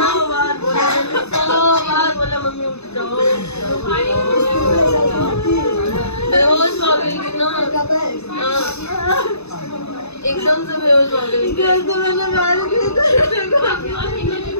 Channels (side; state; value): right; late; 0.80 ms